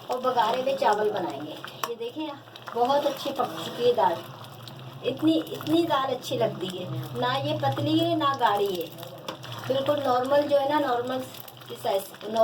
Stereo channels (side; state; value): both; identical; correlation 1.00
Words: और बघारे हुए चावल बनाएंगे। ये देखें बहुत अच्छी पक चुकी है दाल। इतनी दाल अच्छी लगती है ना, ये पतली है ना गाढ़ी है, बिल्कुल नॉर्मल जो है ना, नॉर्मल की साइज